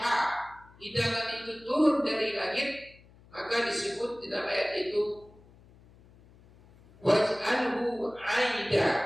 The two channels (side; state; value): left; noise; hum, 26 dB below the sound